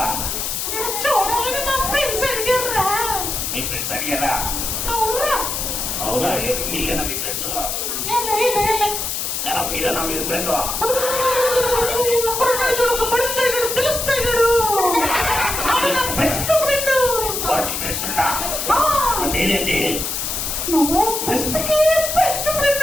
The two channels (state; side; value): noise; left; hiss, 2 dB below the sound